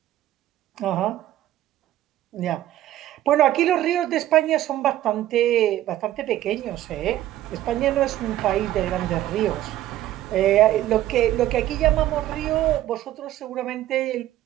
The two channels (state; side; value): quieter; left; 13.7 dB